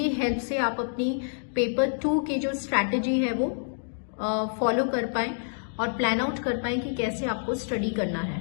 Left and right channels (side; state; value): right; silent; digital silence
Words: हेल्प से आप अपनी पेपर 2 की जो स्ट्रैटेजी है वो फॉलो कर पाएं और प्लान आउट कर पाएं कि कैसे आपको स्टडी करना